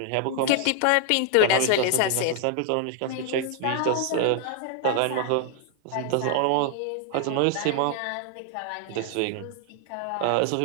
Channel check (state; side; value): different; both; correlation 0.00